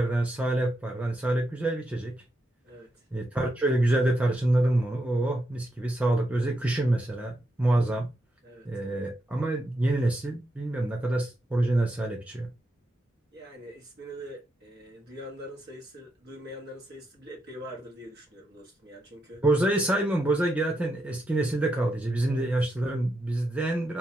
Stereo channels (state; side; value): normal; both; correlation 0.83